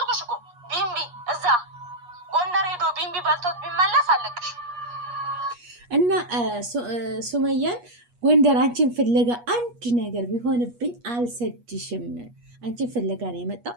እኮ። ቢንቢ እዛ ጎንደር ሄዶ ቢንቢ በልቶት ቢመለስ አለቅሽ እና ሱመያን ጎንደር አንቺን ፍለጋ አንድ ነገር ቢሆንብኝ አልሰድሽም። አንቺን ፍለጋ ነው የመጣው።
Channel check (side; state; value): left; late; 8.3 ms